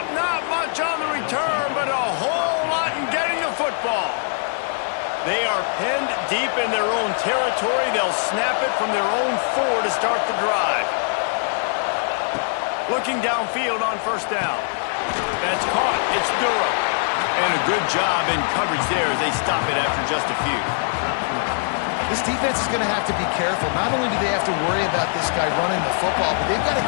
not much on the return, but a whole lot in getting the football. They are penned deep in their own territory. They'll snap it from their own 4 to start the drive. Looking downfield on first down. That's caught. It's Durham. And a good job in coverage there as they stop it after just a few. This defense is going to have to be careful. Not only do they have to worry about this guy running the football, but they've got to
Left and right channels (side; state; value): right; silent; digital silence